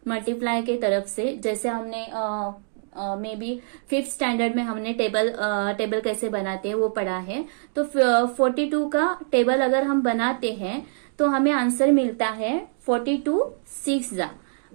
मल्टीप्लाई के तरफ से, जैसे हमने मे बी 5th स्टैंडर्ड में हमने टेबल कैसे बनाते हैं वो पढ़ा है। तो 42 का टेबल अगर हम बनाते हैं तो हमें आंसर मिलता है 42 6 जा।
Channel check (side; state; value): left; silent; digital silence